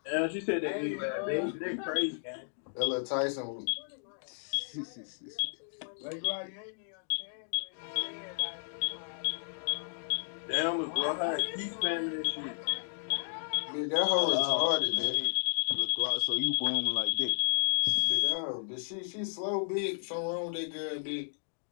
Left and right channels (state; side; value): silent; right; digital silence